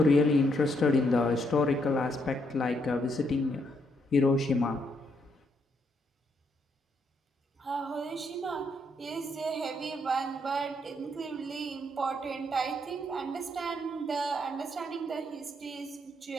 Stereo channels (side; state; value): both; normal; correlation 0.75